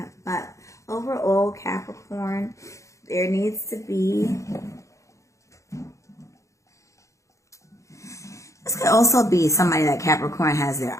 But overall, Capricorn, there needs to be... This could also be somebody that Capricorn has their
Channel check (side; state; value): right; late; 0.15 ms